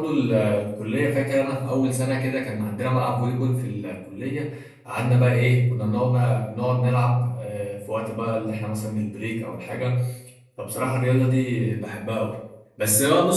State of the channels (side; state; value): both; identical; correlation 1.00